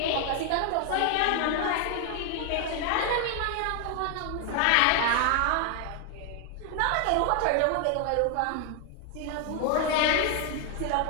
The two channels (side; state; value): both; different; correlation 0.00